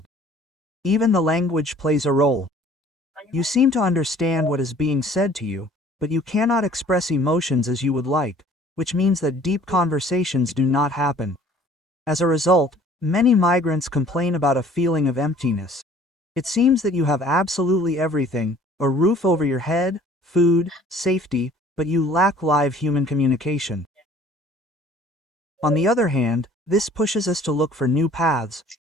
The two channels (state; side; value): normal; both; correlation 0.53